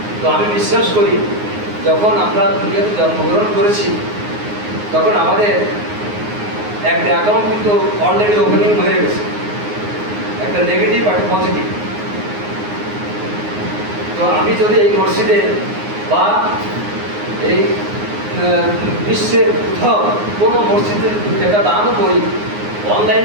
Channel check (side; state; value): left; late; 9.6 ms